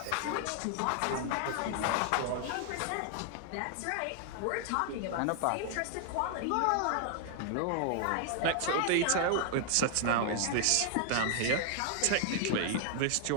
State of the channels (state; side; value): different; both; correlation 0.00